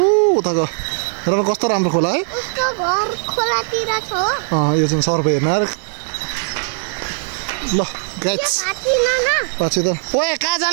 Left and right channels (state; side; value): silent; left; digital silence